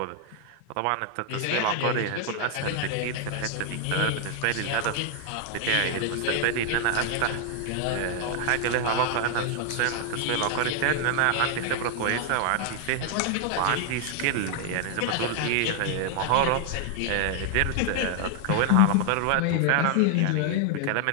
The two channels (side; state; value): both; different; correlation 0.00